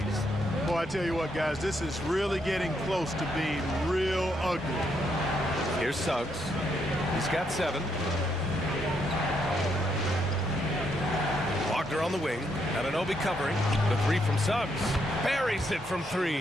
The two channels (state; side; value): normal; both; correlation 0.76